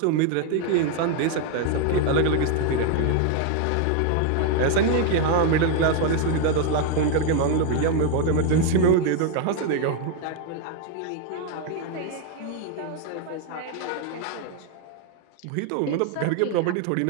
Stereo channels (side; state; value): both; different; correlation 0.01